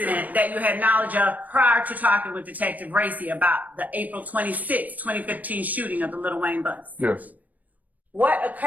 that you had knowledge of prior to talking with Detective Racy about the April 26, 2015 shooting of the Lil Wayne bus? Yes. What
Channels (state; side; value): late; left; 0.078 ms